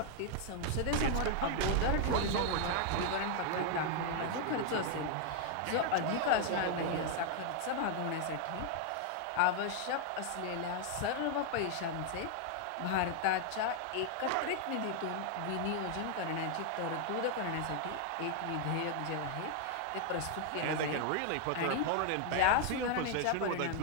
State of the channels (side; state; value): both; different; correlation 0.00